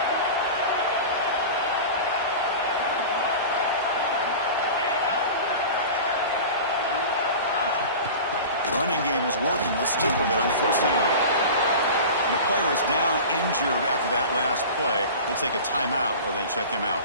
Running game is working. They'll stick with it on 1st down. The player is down injured after that last play. We'll take a timeout while they check him out.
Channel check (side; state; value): both; inverted; correlation -0.34